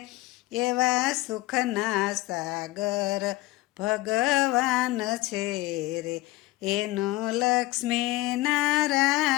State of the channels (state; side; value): quieter; right; 19.0 dB